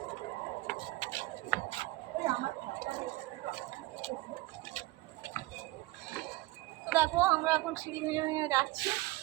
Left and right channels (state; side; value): quieter; left; 20.0 dB